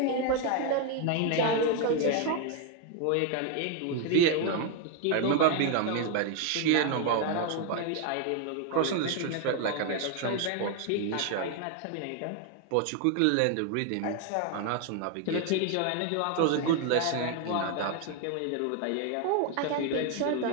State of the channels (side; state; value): both; different; correlation 0.01